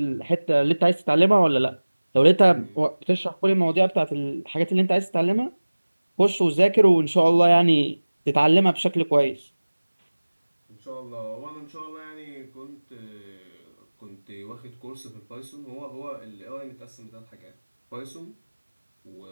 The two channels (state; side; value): inverted; both; correlation -1.00